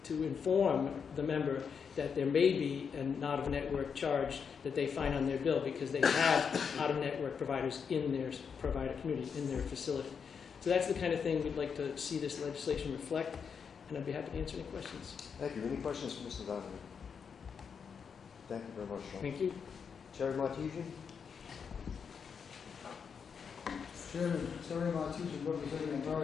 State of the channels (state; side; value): quieter; right; 6.5 dB